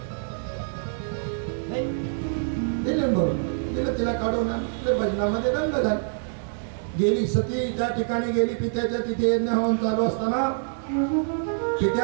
दिले भरून दिलं, तिला काढून भजनामध्ये रंग झाला. गेली सती त्या ठिकाणी गेली. पित्याच्या तिथे यज्ञ होऊन चालू असताना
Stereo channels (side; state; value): left; silent; digital silence